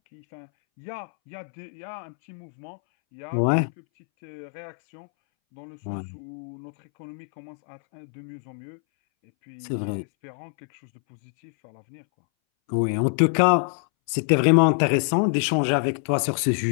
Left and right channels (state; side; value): silent; right; 61 dB below the other